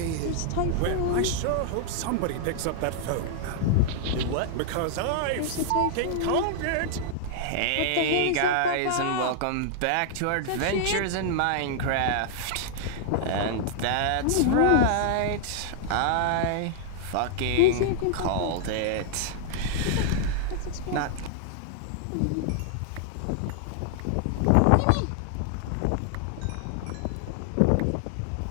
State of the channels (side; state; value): both; different; correlation -0.01